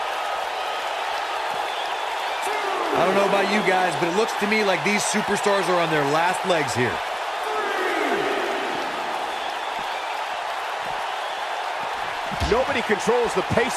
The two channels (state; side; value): identical; both; correlation 1.00